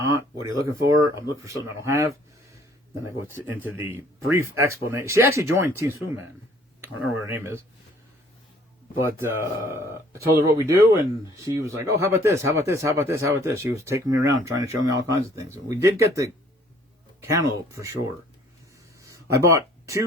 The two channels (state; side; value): normal; both; correlation 0.58